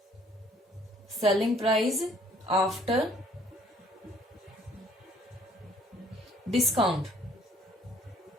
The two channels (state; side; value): normal; both; correlation 0.59